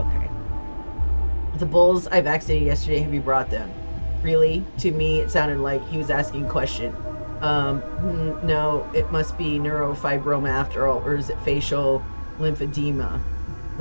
The bulls I vaccinated yesterday, have you brought them? Really? To me, it sounded like he was asking a question. No, it must be neurofibroma after all, or is it facial lymphedema?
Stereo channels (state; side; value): inverted; both; correlation -1.00